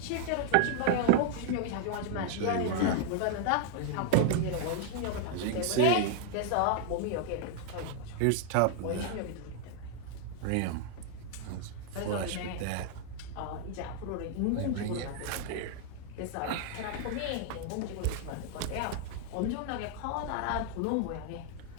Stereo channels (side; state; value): both; different; correlation 0.00